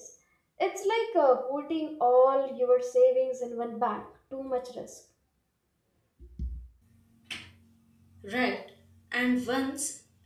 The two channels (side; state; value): both; identical; correlation 1.00